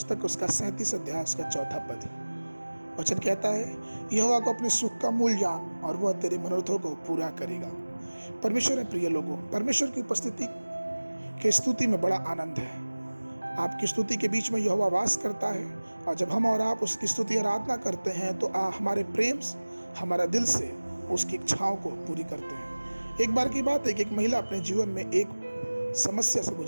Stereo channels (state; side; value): inverted; both; correlation -1.00